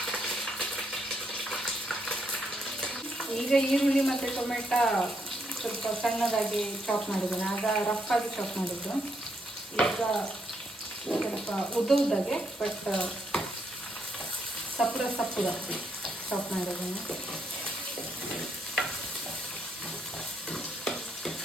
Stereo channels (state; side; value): normal; both; correlation 0.76